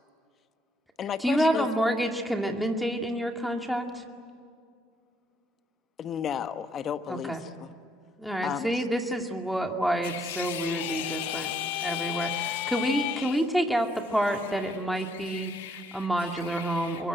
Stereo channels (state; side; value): normal; both; correlation 0.70